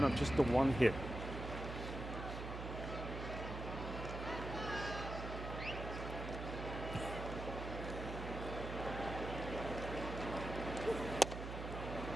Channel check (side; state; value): right; noise; hum, 6 dB below the sound